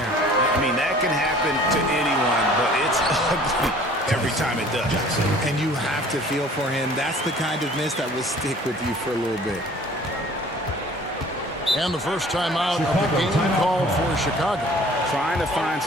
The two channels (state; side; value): normal; both; correlation 0.50